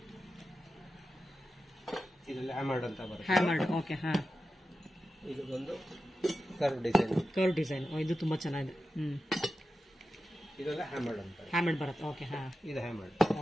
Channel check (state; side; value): normal; both; correlation 0.91